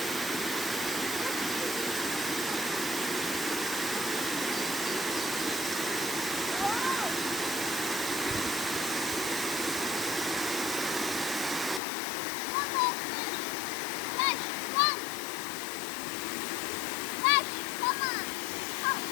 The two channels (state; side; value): drops out; right; at 11.8 s